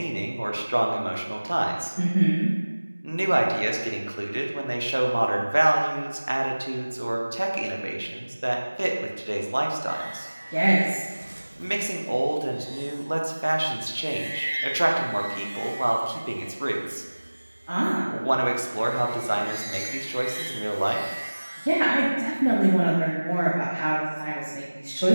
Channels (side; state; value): both; inverted; correlation -1.00